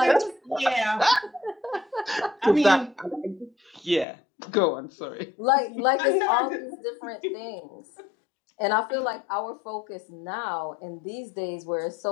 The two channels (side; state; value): right; drops out; at 4.0 s